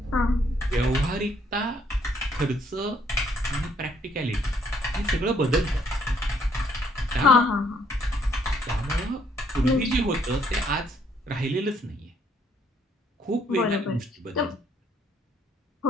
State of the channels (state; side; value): normal; both; correlation 0.67